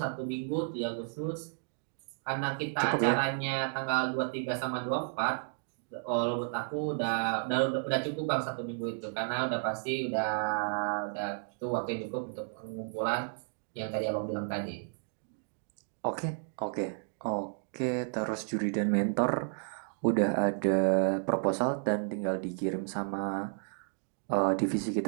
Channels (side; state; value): left; silent; digital silence